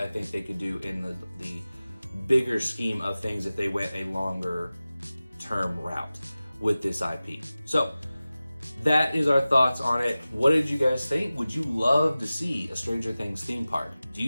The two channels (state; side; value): inverted; both; correlation -0.96